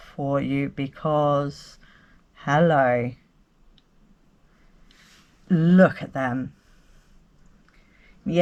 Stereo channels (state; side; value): identical; both; correlation 1.00